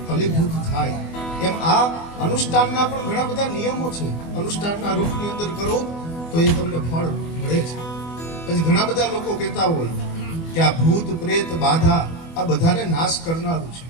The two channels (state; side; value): late; right; 24 ms